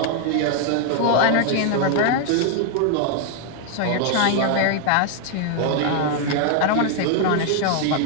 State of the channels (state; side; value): different; both; correlation 0.00